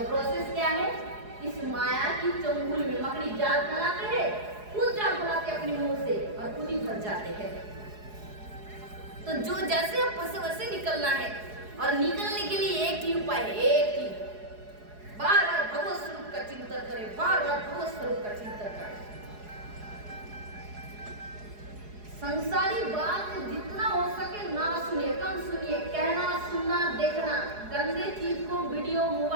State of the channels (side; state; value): left; late; 4.8 ms